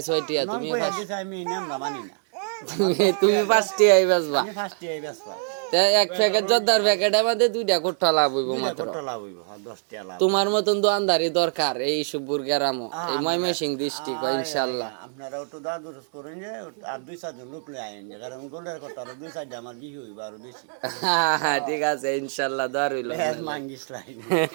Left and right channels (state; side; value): silent; left; digital silence